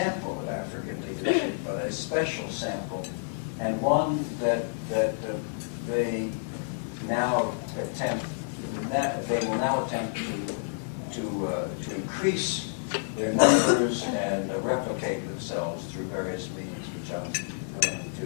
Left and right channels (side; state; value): right; silent; 56 dB below the other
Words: of African leadership, but a special sample, and one that they now attempt. They will now attempt to increase their numbers and replicate themselves through various means, which I'm going to